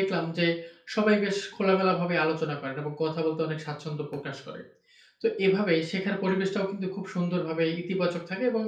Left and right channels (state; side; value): identical; both; correlation 1.00